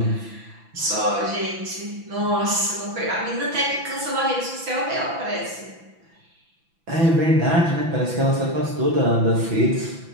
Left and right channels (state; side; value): late; left; 6.0 ms